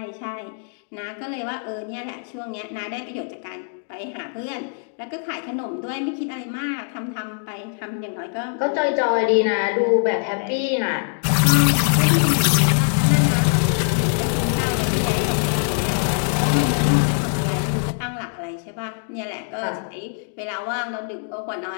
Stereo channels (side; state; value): right; silent; 59 dB below the other